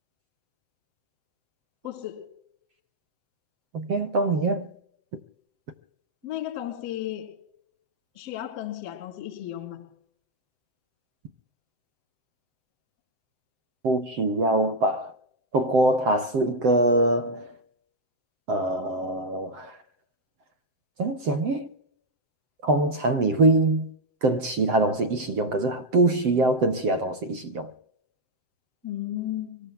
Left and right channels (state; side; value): late; left; 7.8 ms